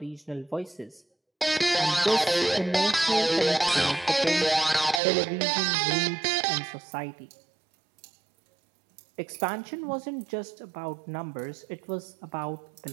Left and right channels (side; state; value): left; drops out; at 5.0 s